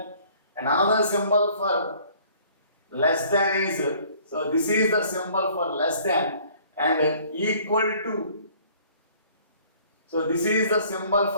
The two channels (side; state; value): both; inverted; correlation -0.56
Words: And another symbol for less than is So this is the symbol for less than and equal to. So this is the symbol